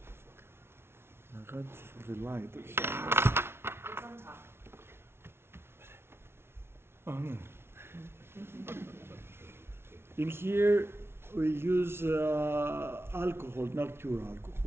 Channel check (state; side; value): late; left; 0.12 ms